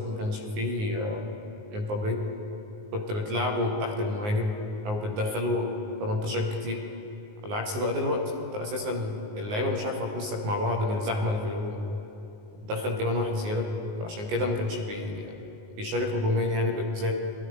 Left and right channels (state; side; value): late; left; 19 ms